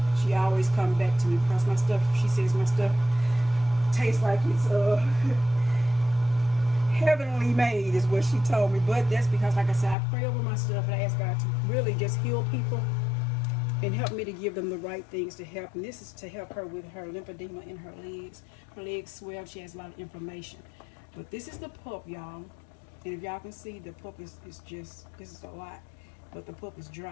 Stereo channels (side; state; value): right; drops out; at 10.0 s